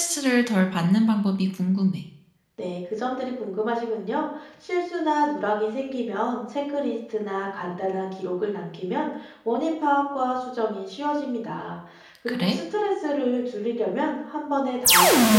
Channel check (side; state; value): both; identical; correlation 1.00